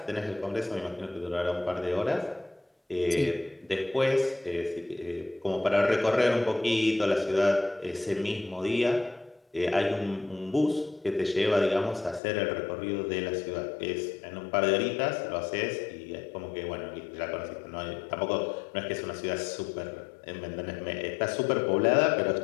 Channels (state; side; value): drops out; right; at 12.2 s